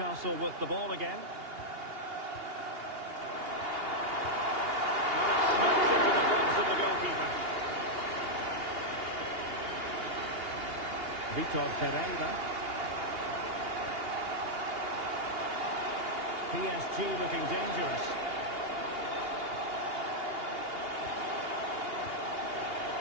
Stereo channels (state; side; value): late; left; 2.8 ms